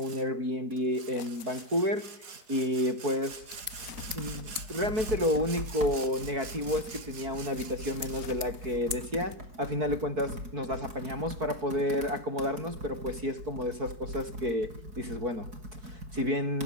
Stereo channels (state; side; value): late; left; 4.3 ms